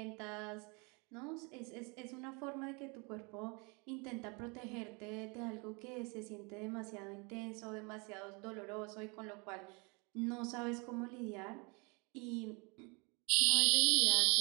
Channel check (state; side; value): quieter; left; 30.8 dB